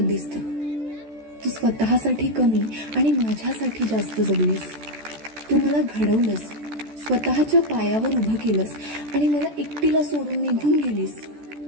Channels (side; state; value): left; late; 14 ms